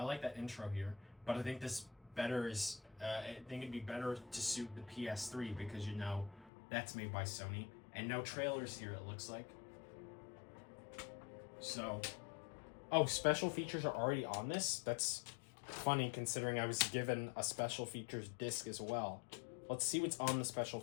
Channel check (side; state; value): right; drops out; at 6.5 s